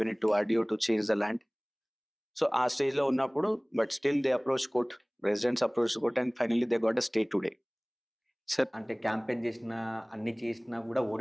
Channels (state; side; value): identical; both; correlation 1.00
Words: it to RDO to change the land. So ఆ స్టేజ్లో ఉన్నప్పుడు but still they approach court, residents approach court and finally they got a stay today. Sir అంటే campaign చేసినా అన్ని చేసినా కూడా